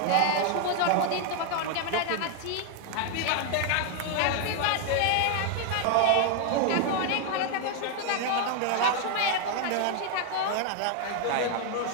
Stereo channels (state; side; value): different; both; correlation 0.00